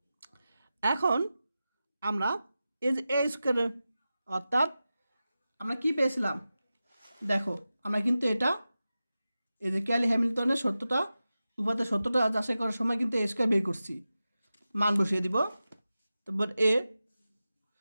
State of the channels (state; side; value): inverted; both; correlation -0.94